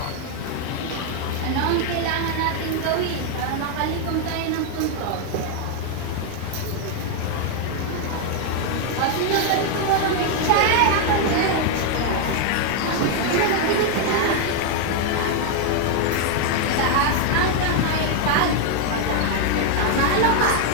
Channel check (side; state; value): both; different; correlation 0.00